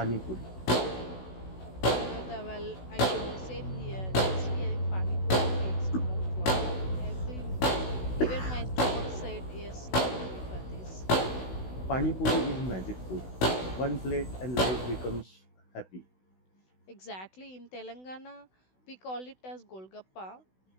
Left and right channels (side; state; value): right; late; 16 ms